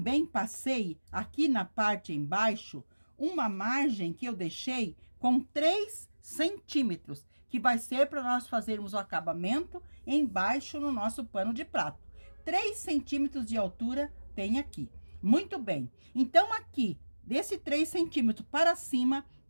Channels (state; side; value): inverted; both; correlation -1.00